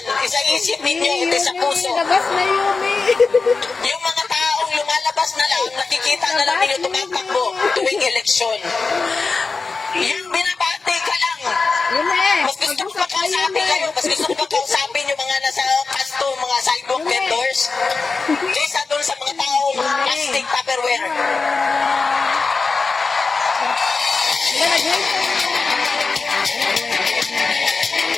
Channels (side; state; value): right; quieter; 4.3 dB